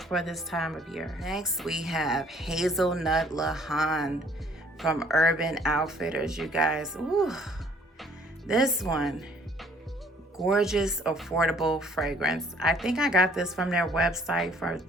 for this time of year. Next, we have Hazelnut Lahan from Urban Outfitters, you guys. Ooh, this one, gorgeous, affordable fragrance. I think I got this from their website for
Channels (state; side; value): normal; both; correlation 0.59